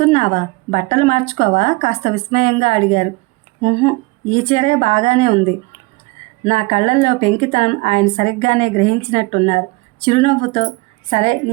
బట్టలు మార్చుకోవా కాస్త విస్మయంగా అడిగారు. ఈ చీరే బాగానే ఉంది. నా కళ్ళల్లో పెంకితనం ఆయన సరిగ్గానే గ్రహించినట్టున్నారు. చిరునవ్వుతో, సరే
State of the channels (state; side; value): quieter; left; 24.8 dB